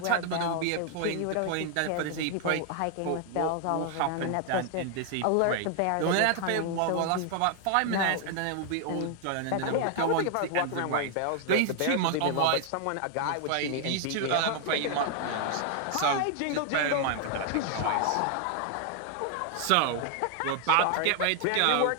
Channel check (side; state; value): both; different; correlation 0.00